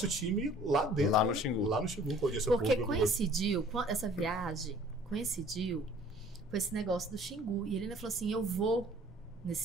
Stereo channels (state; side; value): normal; both; correlation 0.53